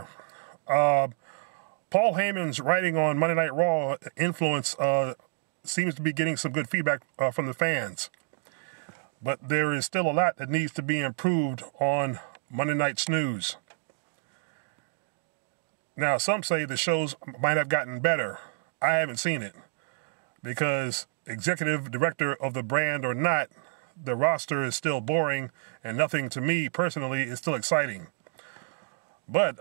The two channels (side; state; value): left; silent; digital silence